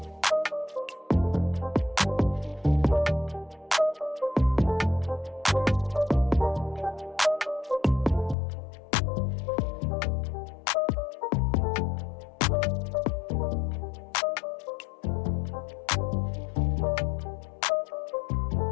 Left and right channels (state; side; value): drops out; right; at 8.3 s